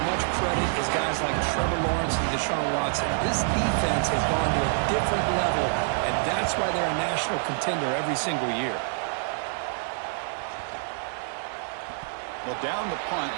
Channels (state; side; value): silent; left; digital silence